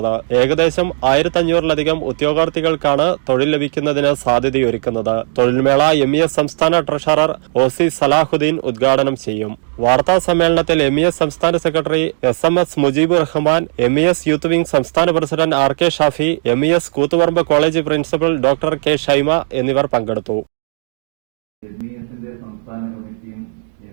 ഏകദേശം 1500ലധികം ഉദ്യോഗാർത്ഥികൾക്കാണ് തൊഴിൽ ലഭിക്കുന്നതിന് സാധ്യതയൊരുക്കുന്നത്. തൊഴിൽമേള MES സംസ്ഥാന ട്രഷറർ OC സലാഹുദ്ദീൻ ഉദ്ഘാടനം ചെയ്യും. വാർത്താ സമ്മേളനത്തിൽ MES സംസ്ഥാന secretary SMS Mujeebur Rahman, MES youth wing സംസ്ഥാന president RK Shafi, MES Koothuparamba college principal doctor K Shaima എന്നിവർ പങ്കെടുത്തു. MESന്റെ സംസ്ഥാന കമ്മിറ്റിയും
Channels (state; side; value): silent; left; digital silence